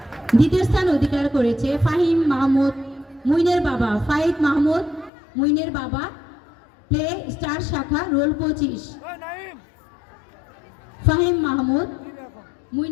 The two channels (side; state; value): right; drops out; at 5.1 s